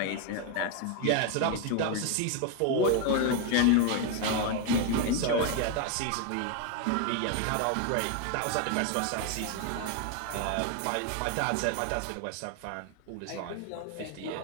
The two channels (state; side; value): different; both; correlation 0.01